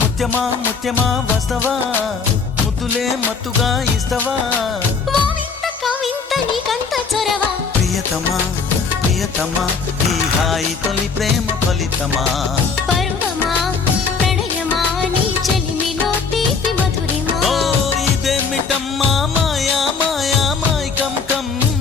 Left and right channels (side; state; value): right; quieter; 5.2 dB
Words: ముత్యమా వస్తవా ముద్దులే మత్తుగా ఇస్తవా ప్రియతమా ప్రియతమా ఈ హాయి తొలి ప్రేమ ఫలితమా పరువమా ప్రణయమా నీ చెలిమిలో తీపి మధురిమా ఓ ఇదేమిటమ్మా మాయా మాయా మైకం